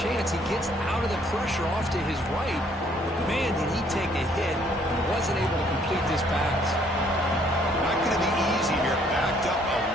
He gets out of the pressure off to his right. Man, did he take a hit and wasn't able to complete this pass. Not going to be easy here. Backed up a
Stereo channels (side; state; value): both; normal; correlation 0.64